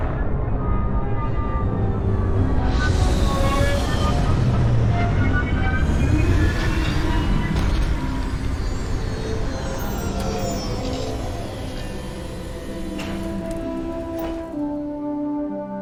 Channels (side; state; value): both; identical; correlation 1.00